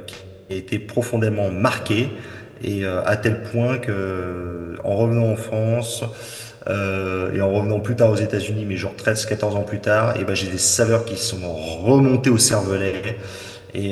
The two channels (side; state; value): both; identical; correlation 1.00